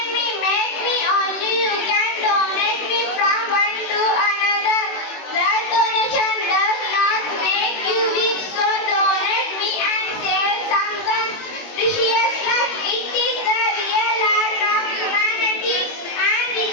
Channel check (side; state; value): right; late; 21 ms